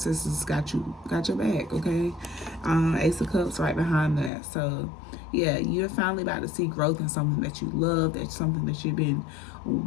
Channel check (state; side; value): drops out; right; at 4.3 s